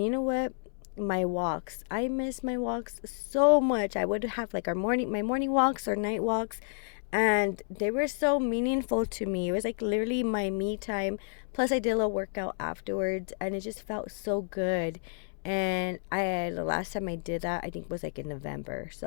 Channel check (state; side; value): silent; right; 58 dB below the other